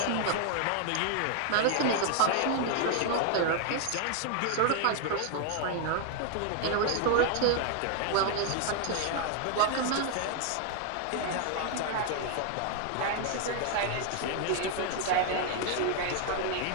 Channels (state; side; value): different; both; correlation 0.00